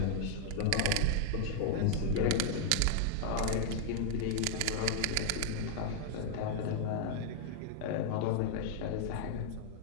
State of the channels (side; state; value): both; different; correlation -0.01